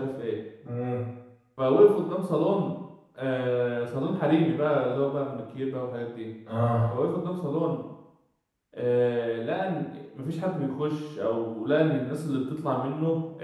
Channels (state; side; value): identical; both; correlation 1.00